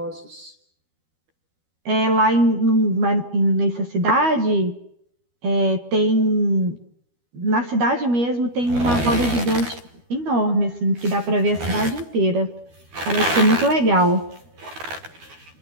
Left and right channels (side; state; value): left; late; 12 ms